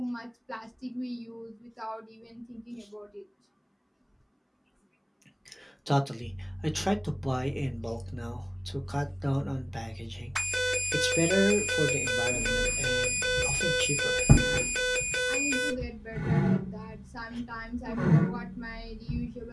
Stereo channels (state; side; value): identical; both; correlation 1.00